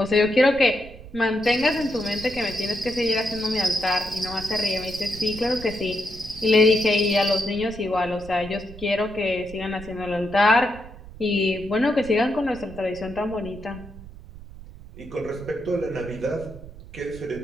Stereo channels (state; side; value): noise; right; rumble, 16 dB below the sound